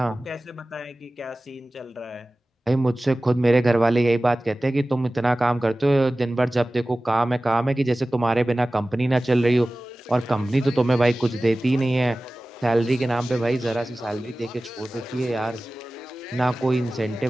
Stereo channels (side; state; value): both; normal; correlation 0.97